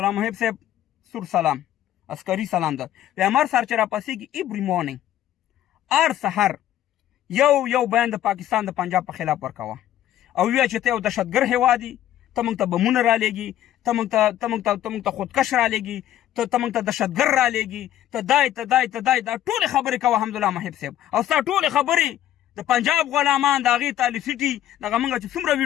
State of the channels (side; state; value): right; quieter; 12.4 dB